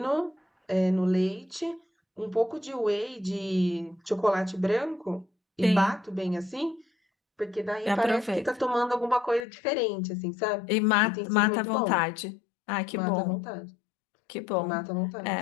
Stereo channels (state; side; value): drops out; right; at 9.5 s